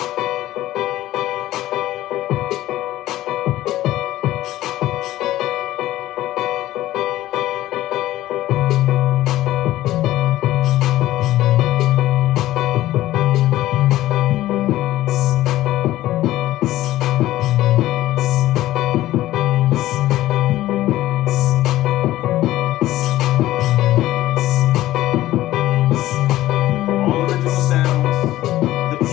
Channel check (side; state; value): right; quieter; 15.2 dB